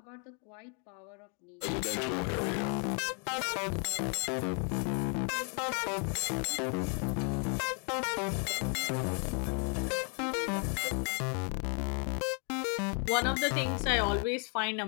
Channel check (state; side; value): quieter; right; 38.4 dB